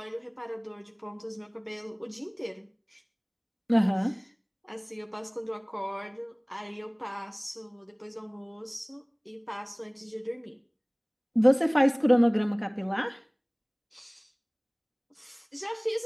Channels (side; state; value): both; identical; correlation 1.00